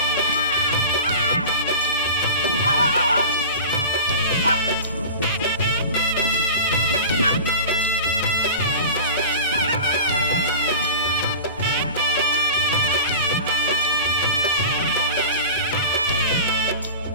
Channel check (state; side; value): inverted; both; correlation -0.33